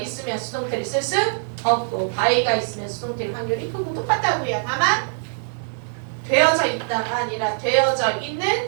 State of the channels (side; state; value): left; silent; digital silence